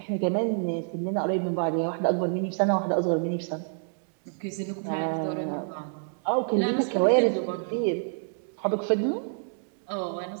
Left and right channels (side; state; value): left; silent; digital silence